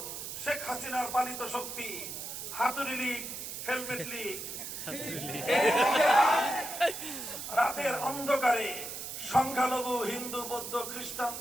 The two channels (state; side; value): noise; right; hiss, 7 dB below the sound